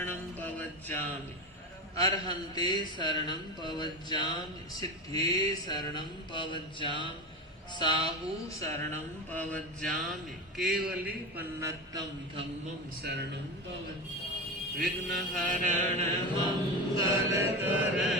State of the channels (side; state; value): both; normal; correlation 0.22